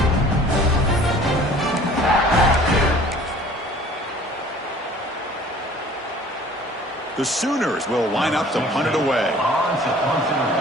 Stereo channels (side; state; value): both; normal; correlation 0.50